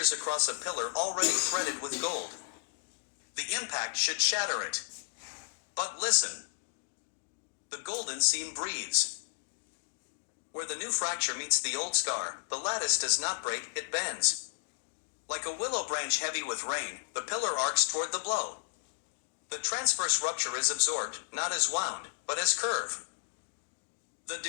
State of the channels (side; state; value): right; silent; digital silence